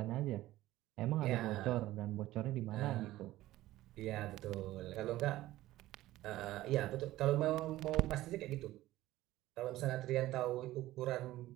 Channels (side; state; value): left; quieter; 16.0 dB